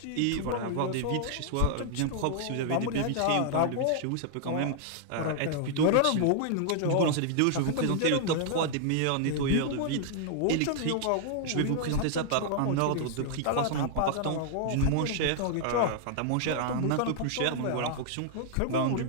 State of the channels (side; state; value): both; different; correlation -0.01